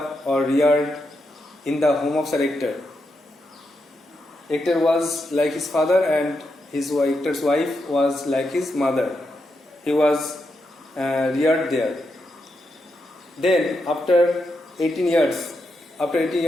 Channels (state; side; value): normal; both; correlation 0.84